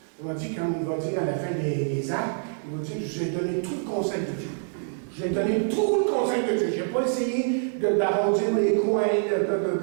Il m'a dit, quand il va dire à la fin des actes, il va dire, je vous ai donné tout le conseil de Dieu. Je vous ai donné tout le conseil de Dieu. Je n'ai pas essayé d'arrondir les coins,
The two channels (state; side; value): silent; left; digital silence